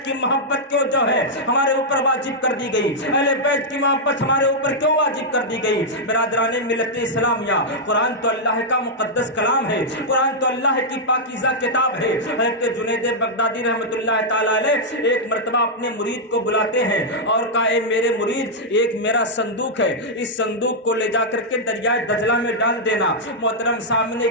کی محبت کیوں جو ہے ہمارے اوپر واجب کر دی گئی؟ اہل بیت کی محبت ہمارے اوپر کیوں واجب کر دی گئی؟ برادران ملت اسلامیہ، قرآن تو اللہ کا مقدس کلام ہے، قرآن تو اللہ کی پاکیزہ کتاب ہے۔ حضرت جنید بغدادی رحمۃ اللہ تعالی علیہ ایک مرتبہ اپنے مرید کو بلاتے ہیں اور کہا، اے میرے مرید، ایک میرا صندوق ہے، اس صندوق کو لے جا کر کے دریائے دجلہ میں ڈال دینا۔ محترم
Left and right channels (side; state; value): both; normal; correlation -0.05